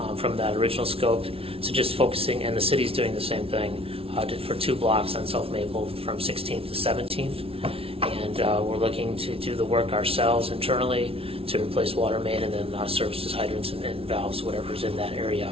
from that original scope to just focusing, and the city's doing the same thing for 2 blocks on South Maple from 16th to 17th. And we're looking to do the work ourselves internally to replace water main and then services, hydrants, and valves, whatever's in that area.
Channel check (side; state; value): left; late; 0.27 ms